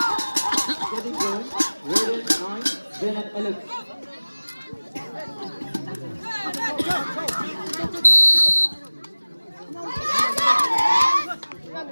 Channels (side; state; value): both; inverted; correlation -1.00